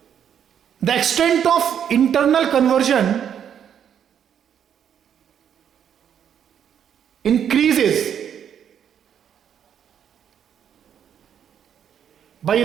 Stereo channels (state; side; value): quieter; left; 8.8 dB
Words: The extent of internal conversion increases by